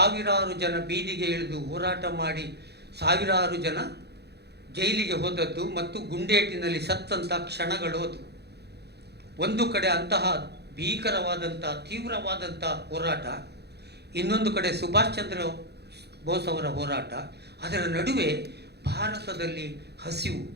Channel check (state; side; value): late; left; 0.48 ms